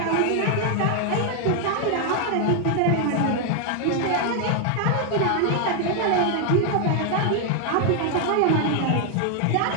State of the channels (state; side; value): different; both; correlation 0.00